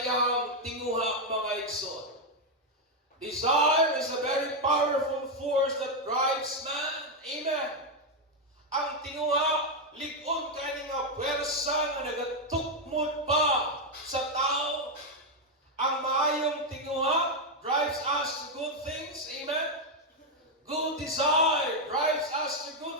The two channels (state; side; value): normal; both; correlation 0.02